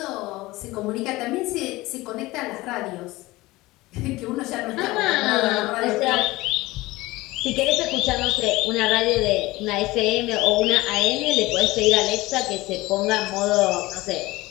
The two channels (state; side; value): quieter; right; 19.8 dB